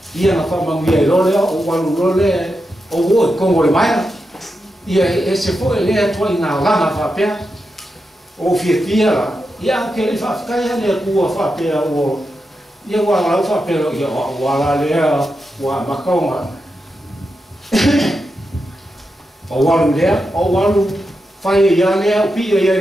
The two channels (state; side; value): normal; both; correlation 0.88